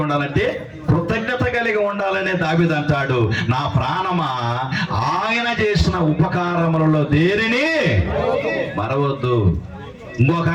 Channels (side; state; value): both; identical; correlation 1.00